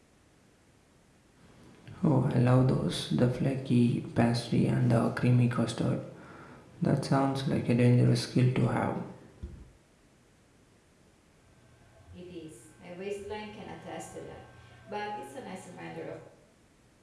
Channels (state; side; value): identical; both; correlation 1.00